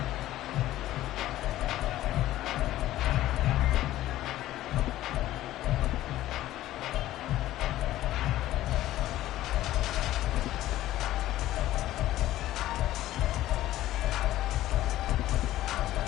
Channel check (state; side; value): quieter; right; 14.6 dB